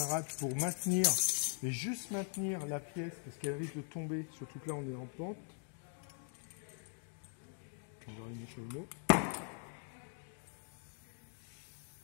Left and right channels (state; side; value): silent; right; 50 dB below the other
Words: pour maintenir, et juste maintenir la pièce, parce qu'elle risque de tomber, surtout que là on est en pente. On va allumer le chalumeau.